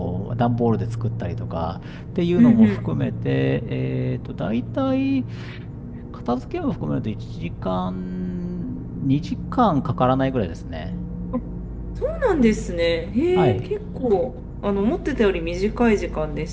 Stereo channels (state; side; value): identical; both; correlation 1.00